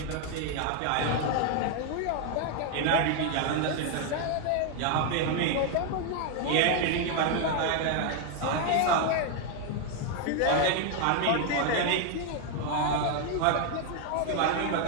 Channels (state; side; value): different; both; correlation 0.01